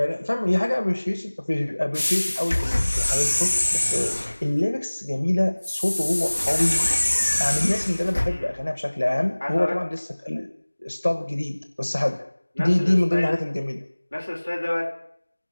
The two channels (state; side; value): inverted; both; correlation -1.00